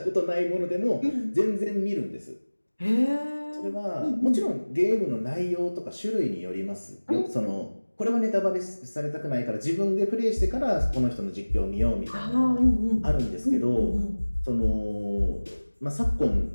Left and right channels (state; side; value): inverted; both; correlation -1.00